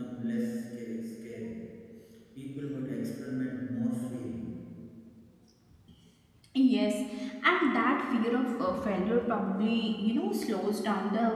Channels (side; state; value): both; identical; correlation 1.00